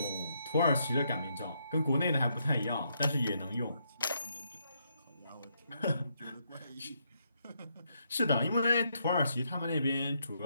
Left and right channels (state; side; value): inverted; both; correlation -0.76